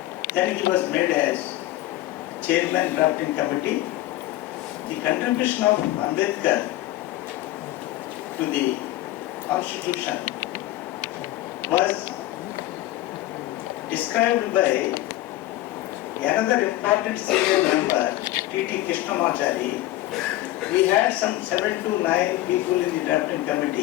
Then he was made as Chairman Drafting Committee. The contribution of Ambedkar to the Constitution was described by another important senior member, T.T. Krishnamachari. We had some 7 to 9 people in the drafting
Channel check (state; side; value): quieter; right; 15.7 dB